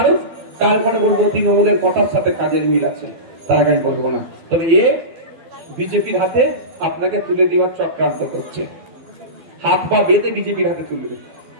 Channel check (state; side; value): late; left; 12 ms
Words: তারপরে বলবো তৃণমূলের কথার সাথে কাজের মিল আছে, তার আগে আমি বলবো না। তবে এ বিজেপির হাতে আপনাকে তুলে দেওয়ার চক্রান্ত করছে, হাত পা বেঁধে বিজেপির হাতে তুলে দেবে,